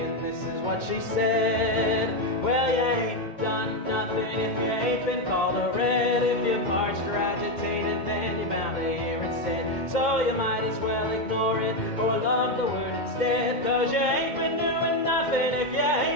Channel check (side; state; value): right; late; 2.2 ms